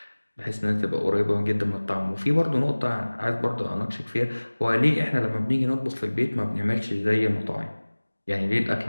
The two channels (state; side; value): inverted; both; correlation -1.00